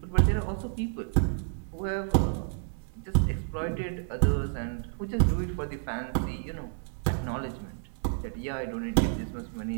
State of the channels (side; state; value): left; silent; digital silence